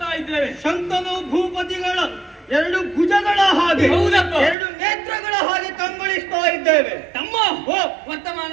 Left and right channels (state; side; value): drops out; left; at 4.5 s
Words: ಇದ್ದೇವೆ. ಶಂತನು ಭೂಪತಿಗಳ ಎರಡು ಭುಜಗಳ ಹಾಗೆ, ಹೌದಪ್ಪ, ಎರಡು ನೇತ್ರಗಳ ಹಾಗೆ ಕಂಗೊಳಿಸ್ತಾ ಇದ್ದೇವೆ. ತಮ್ಮ